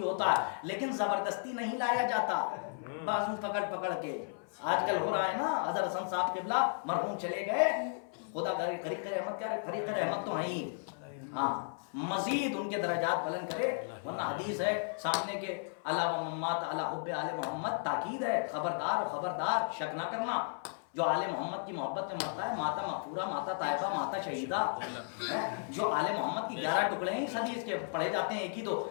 ہوتا ہے. لیکن زبردستی نہیں لایا جاتا بازو پکڑ پکڑ کے. آج کل ہو رہا ہے نا. حضرت حسن صاحب قبلہ مرحوم چلے گئے، خدا فریق رحمت کیا فریق رحمت تو ہیں. ہاں مزید ان کے درجات بلند کرے. ورنہ حدیث ہے سامنے کے علاوہ محمد علی حب آل محمد، تاکید ہے خبردار و خبردار شک نہ کرنا. جو آل محمد کی محبت میں مرتا ہے ماتا مغفورہ، ماتا طیبہ، ماتا شہیدہ. جو آل محمد کی 11 ٹکڑے ہیں اس حدیث کے پڑھے جاتے ہیں ایک ہی دو،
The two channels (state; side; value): silent; right; 55 dB below the other